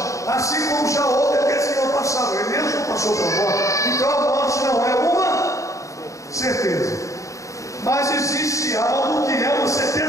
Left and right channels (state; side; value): late; right; 0.15 ms